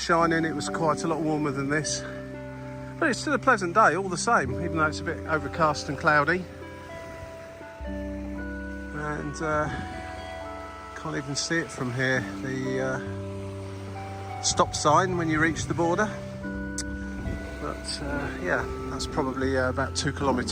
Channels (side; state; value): both; identical; correlation 1.00